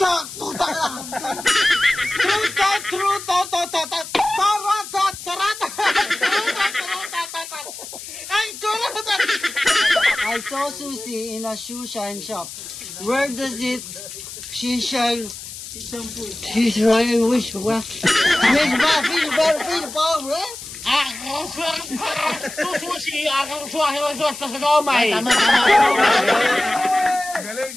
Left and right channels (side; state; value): left; noise; hiss, 12 dB below the sound